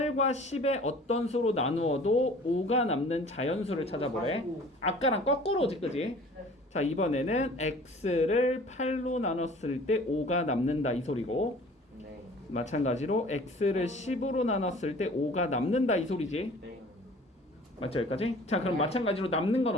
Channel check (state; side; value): normal; both; correlation 0.48